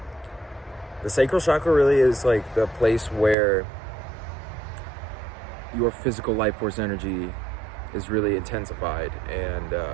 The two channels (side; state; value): left; drops out; at 3.4 s